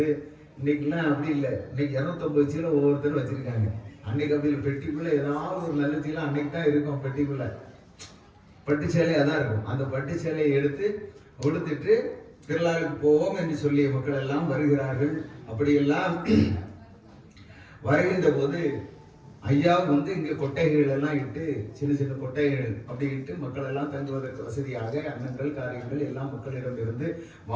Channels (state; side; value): identical; both; correlation 1.00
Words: இன்னைக்கெல்லாம் அப்படி இல்லை. இன்னைக்கு 250 சீலை ஒவ்வொருத்தரும் வச்சிருக்காங்க. அன்னைக்கு அப்படி பெட்டிக்குள்ள ஏதாவது ஒரு நல்ல சீலை அன்னைக்கு தான் இருக்கும். பெட்டிக்குள்ள பட்டு சேலை அதான் இருக்கும். அந்த பட்டு சேலையை எடுத்து உடுத்துட்டு திருவிழாவுக்கு போவோம் என்று சொல்லி மக்கள் எல்லாம் வருகிறார்கள். அப்படியெல்லாம் வருகின்ற போது ஐயா இங்க கொட்டைகள் எல்லாம் இட்டு, சின்ன சின்ன கொட்டைகள் அப்படி இட்டு மக்கள் எல்லாம் தங்குவதற்கு வசதியாக அன்னங்கள் காரியங்கள் எல்லாம் மக்களிடம் இருந்து